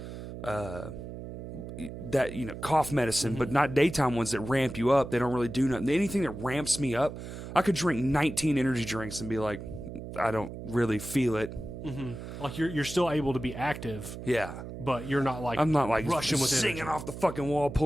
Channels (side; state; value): right; noise; hum, 10 dB below the sound